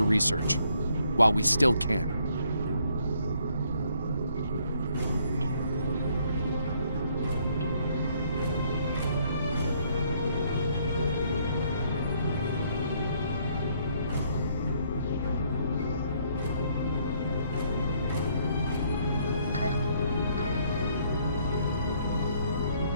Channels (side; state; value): both; inverted; correlation -0.68